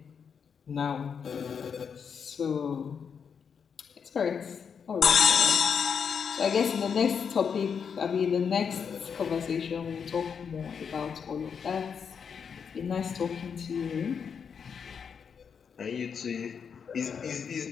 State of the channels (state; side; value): quieter; right; 6.7 dB